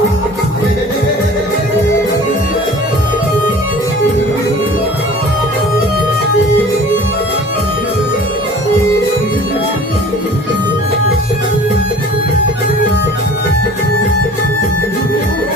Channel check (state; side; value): normal; both; correlation 0.45